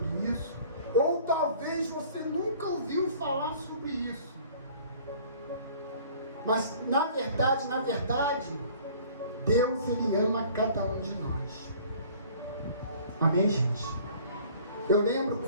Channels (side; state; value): both; inverted; correlation -0.51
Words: isso, ou talvez você nunca ouviu falar sobre isso. Mas na verdade, Deus, Ele ama cada um de nós. Amém, gente? Eu lembro